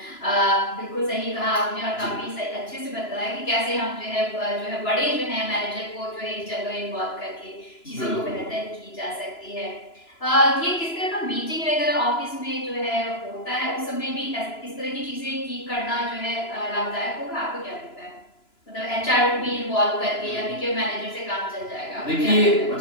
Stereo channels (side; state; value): right; late; 2.9 ms